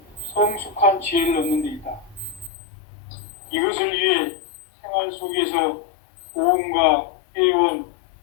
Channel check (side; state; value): right; drops out; at 2.5 s